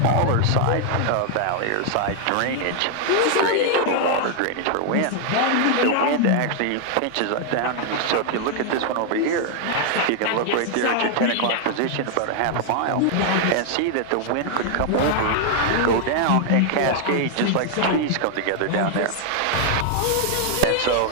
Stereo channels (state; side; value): different; both; correlation 0.00